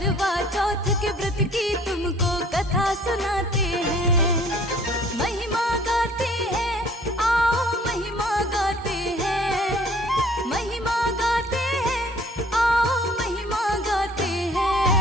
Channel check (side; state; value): both; normal; correlation 0.54